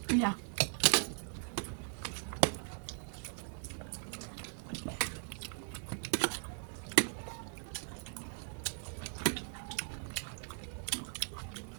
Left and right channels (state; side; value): silent; left; 52 dB below the other